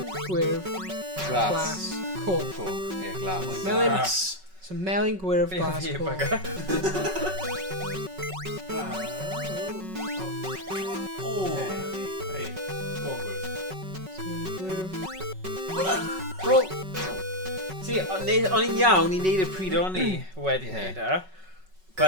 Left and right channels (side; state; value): left; late; 5.3 ms